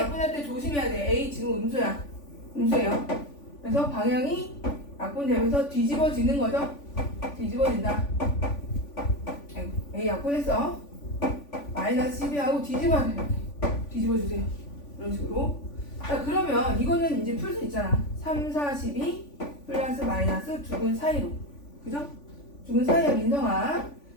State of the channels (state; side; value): late; right; 3.5 ms